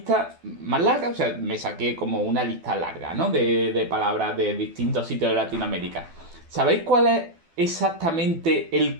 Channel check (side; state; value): left; late; 12 ms